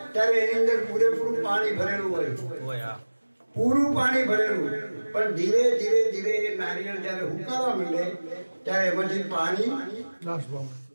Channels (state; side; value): inverted; both; correlation -1.00